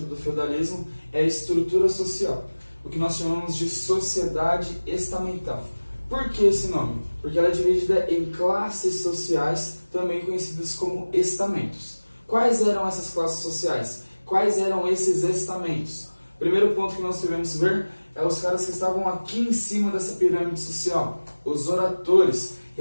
do feudalismo é a estrutura social, o que nós chamamos de sociedade estamental. Por que esse nome? Porque ela é dividida em classes sociais, também conhecidas como estamentos. Quais eram essas classes sociais? Quais eram esses estamentos? O primeiro ponto que nós devemos ver é os caras que estavam aqui em cima dessa pirâmide social, os oratores,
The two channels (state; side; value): inverted; both; correlation -1.00